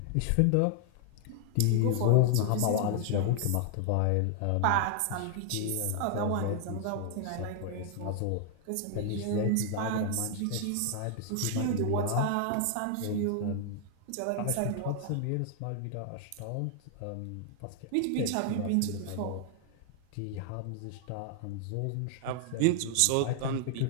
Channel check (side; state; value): both; different; correlation 0.00